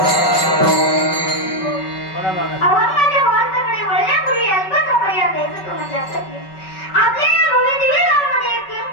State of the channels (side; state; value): right; late; 5.2 ms